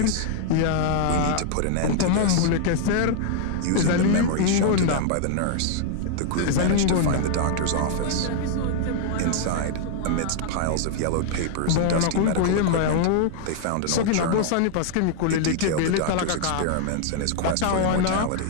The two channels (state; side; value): different; both; correlation -0.01